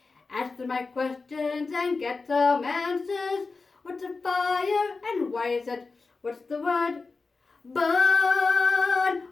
Answer my questions and get some answers. What's a fire and why is it? What's the word? Burn.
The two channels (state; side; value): quieter; right; 4.1 dB